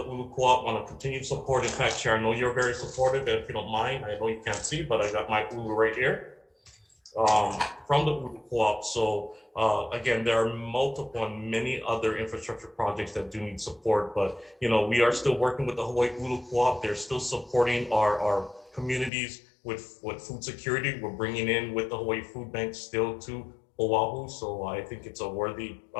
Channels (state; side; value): drops out; right; at 19.1 s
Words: Ulu Co-op, want to continue support. In fact, Chair, I know you're very supportive, and if you don't mind, I know you can't see, but I got my Ulu right here from the Ulu Co-op. So again, there are multiple and many other infrastructure projects that do need support, but you know, we are still working with the Hawaii Ulu Co-op. They're still supporting our communities with food security. We're bringing in with the Hawaii Food Bank still to Oahu. So I think it's a worthy